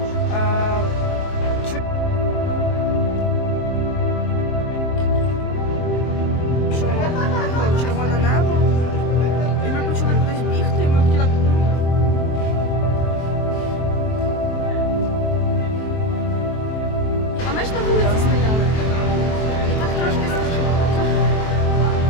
Червоне небо. І ми почали кудись бігти, і ми хотіли. А ми ж на вулиці стояли. І так трошки страшно.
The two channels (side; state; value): right; late; 23 ms